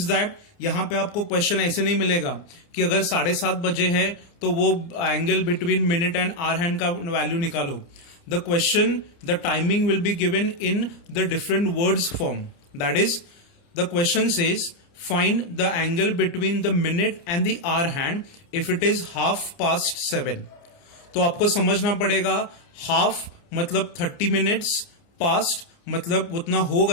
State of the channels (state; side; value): late; right; 29 ms